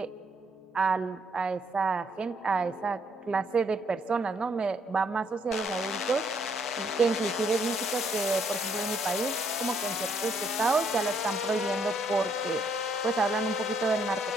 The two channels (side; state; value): both; normal; correlation 0.70